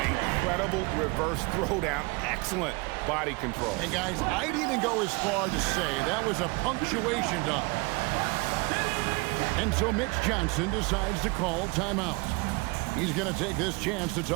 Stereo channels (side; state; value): left; quieter; 27.6 dB